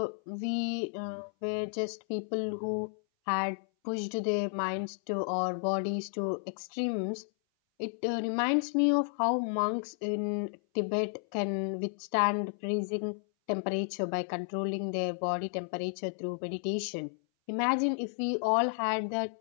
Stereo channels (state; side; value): silent; right; 56 dB below the other